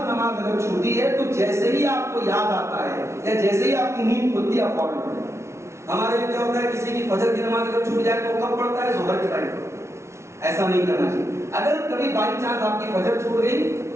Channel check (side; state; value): left; late; 0.13 ms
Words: نماز اگر چھوٹی ہے تو جیسے ہی آپ کو یاد آتا ہے یا جیسے ہی آپ کی نیند کھلتی ہے آپ فوراً پڑھیں۔ ہمارے یہاں کیا ہوتا ہے، کسی کی فجر کی نماز اگر چھوٹ جائے تو کب پڑھتا ہے؟ ظہر کے ٹائم پر۔ ایسا نہیں کرنا چاہیے۔ اگر کبھی بائی چانس آپ کی فجر چھوٹ گئی